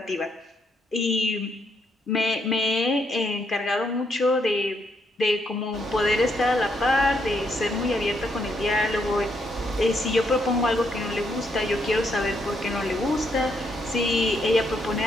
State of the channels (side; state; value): both; normal; correlation 0.75